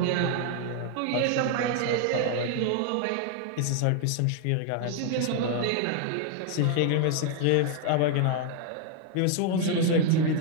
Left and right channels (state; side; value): different; both; correlation 0.00